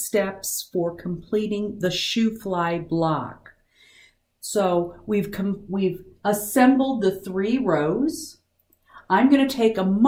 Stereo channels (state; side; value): identical; both; correlation 1.00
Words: for completing the Shoo-Fly block. So we've assembled the 3 rows. I'm going to take a